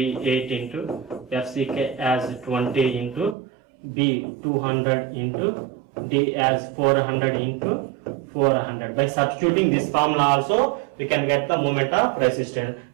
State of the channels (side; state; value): left; drops out; at 3.4 s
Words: into FCK as 20 into B 200 into D as 400 into 400. By substituting this formula also, we can get the moment of resistance,